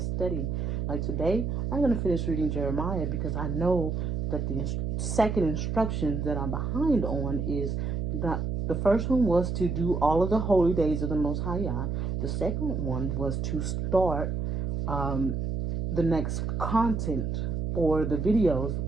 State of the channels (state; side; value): noise; right; hum, 1 dB below the sound